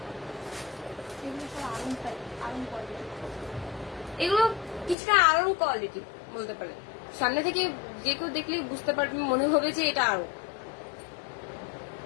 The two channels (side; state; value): right; drops out; at 5.0 s